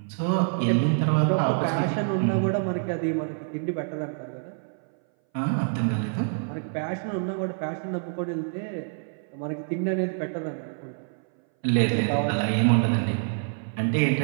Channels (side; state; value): left; silent; 59 dB below the other